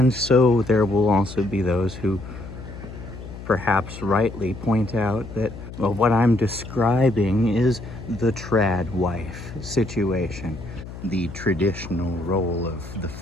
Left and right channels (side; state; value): left; noise; hum, 12 dB below the sound